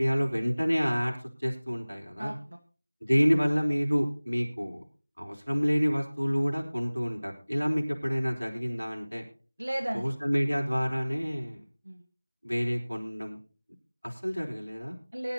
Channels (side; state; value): both; inverted; correlation -1.00